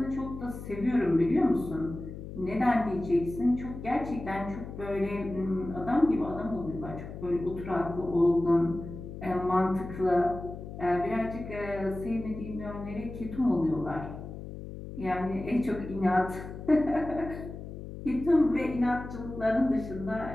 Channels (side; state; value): left; noise; hum, 10 dB below the sound